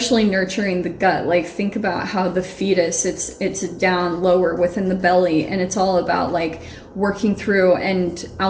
nurturing the gut. Like, think about how the fetus, it's down lower within the belly, and it's all about like working through and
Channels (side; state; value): both; identical; correlation 1.00